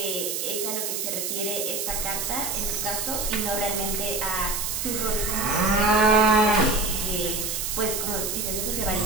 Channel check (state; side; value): noise; right; hiss, 2 dB below the sound